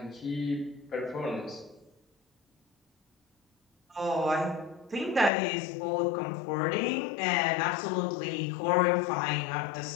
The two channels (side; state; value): right; drops out; at 5.3 s